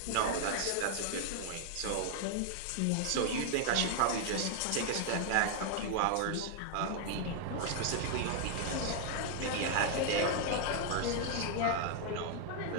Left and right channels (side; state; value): both; different; correlation 0.00